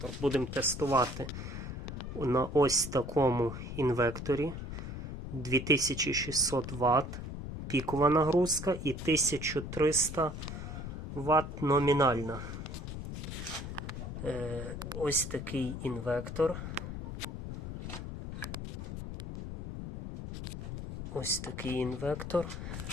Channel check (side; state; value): left; noise; rumble, 7 dB below the sound